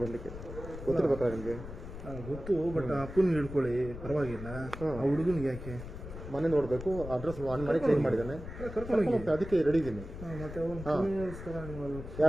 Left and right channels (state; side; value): noise; left; rumble, 11 dB below the sound